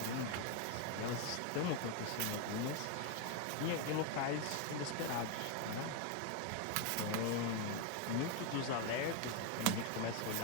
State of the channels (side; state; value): both; different; correlation 0.01